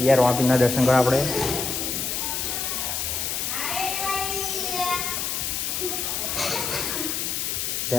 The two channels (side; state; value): left; noise; hiss, 1 dB below the sound